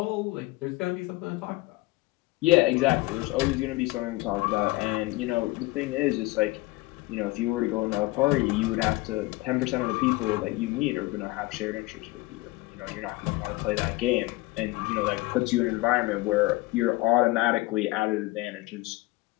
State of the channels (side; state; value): right; quieter; 20.6 dB